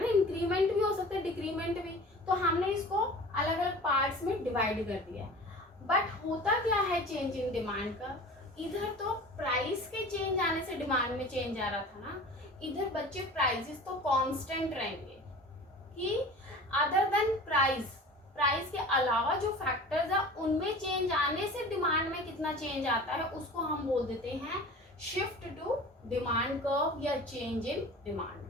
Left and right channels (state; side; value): normal; both; correlation 0.40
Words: ना, इंक्रीमेंट भी हो सकता है, डिक्रीमेंट भी. तो हमने इसको अलग अलग पार्ट्स में डिवाइड कर दिया है. बट होता क्या है चेंज इन डिमांड का, इधर तो प्राइस के चेंज आने से डिमांड में चेंज आ रहा था ना, इधर बच्चे प्राइसेस तो कांस्टेंट रहेंगे, कि अदर देन प्राइस, प्राइस के अलावा जो फैक्टर्स है उनमें चेंज आने से डिमांड में कितना चेंज आता है उसको हम बोल देते हैं शिफ्ट टू डिमांड कर्व या change in demand